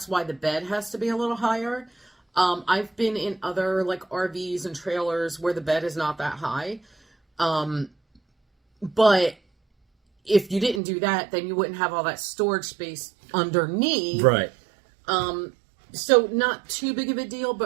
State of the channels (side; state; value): left; drops out; at 10.8 s